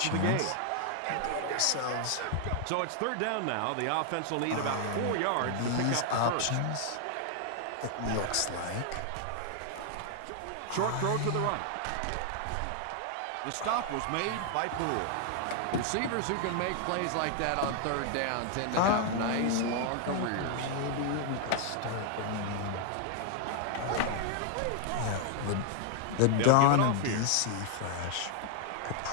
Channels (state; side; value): different; both; correlation 0.00